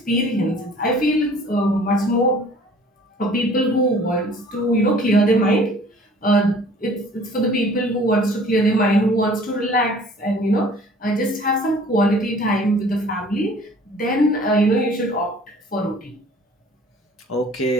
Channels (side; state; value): both; normal; correlation 0.51